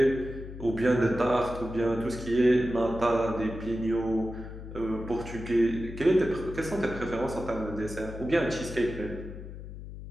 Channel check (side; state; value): left; noise; hum, 11 dB below the sound